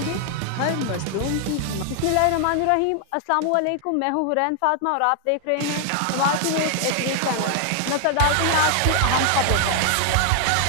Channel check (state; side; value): different; both; correlation 0.00